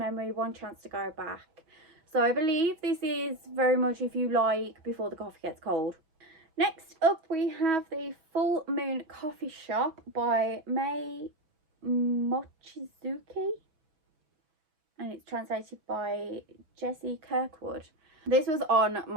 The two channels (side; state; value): left; late; 6.2 ms